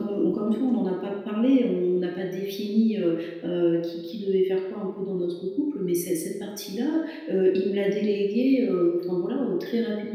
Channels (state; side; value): identical; both; correlation 1.00